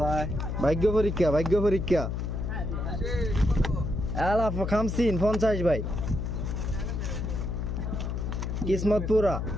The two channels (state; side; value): noise; left; hum, 2 dB below the sound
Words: যায়? ভাগ্য পরীক্ষা, ভাগ্য পরীক্ষা। আলা 50 ভাই, কিসমত পুরা।